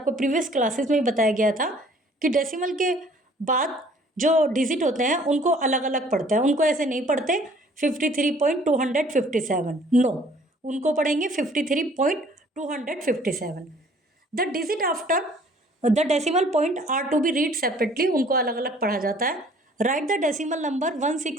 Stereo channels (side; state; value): both; normal; correlation 0.56